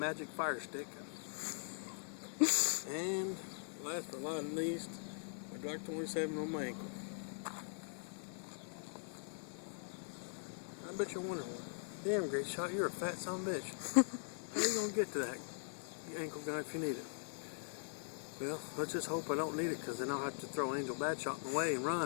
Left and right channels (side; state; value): right; silent; digital silence